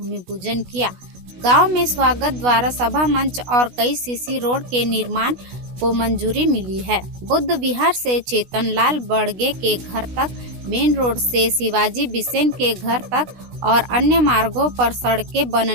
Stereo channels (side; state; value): left; late; 16 ms